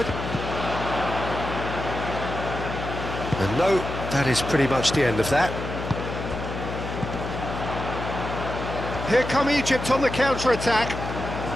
And no, that is pretty much the end of that. Here come Egypt on the counter-attack.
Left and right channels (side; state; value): left; noise; hum, 6 dB below the sound